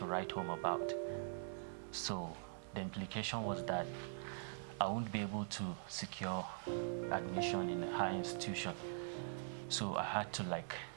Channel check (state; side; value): silent; left; digital silence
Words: write home about. So the implication was that I won't be able to secure admission in a higher institution. So I had to